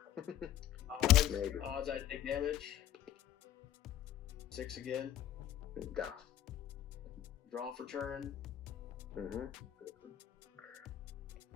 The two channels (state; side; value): quieter; right; 11.6 dB